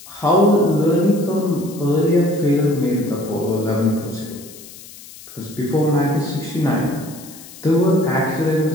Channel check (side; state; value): left; noise; hiss, 18 dB below the sound